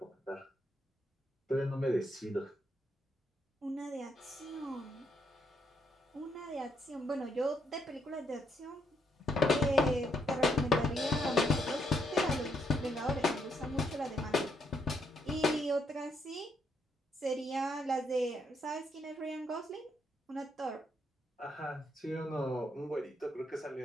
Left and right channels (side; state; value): both; normal; correlation 0.75